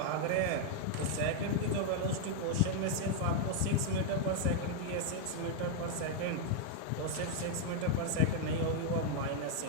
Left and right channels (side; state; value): both; different; correlation 0.00